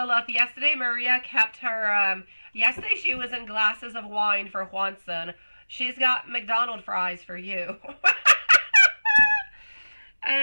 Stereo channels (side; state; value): both; inverted; correlation -1.00